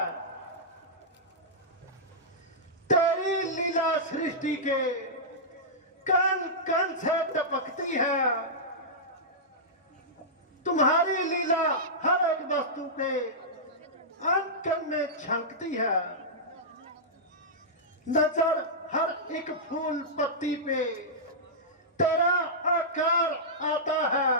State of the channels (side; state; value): both; normal; correlation -0.13